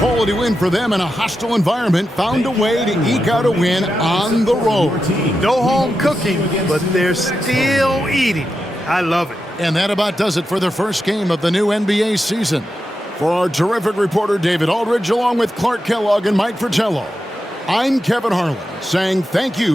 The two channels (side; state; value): both; normal; correlation 0.88